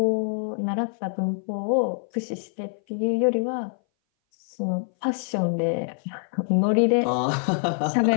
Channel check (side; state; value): right; silent; 59 dB below the other